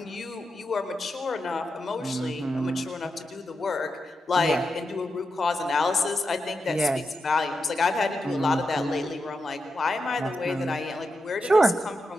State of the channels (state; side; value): normal; both; correlation 0.87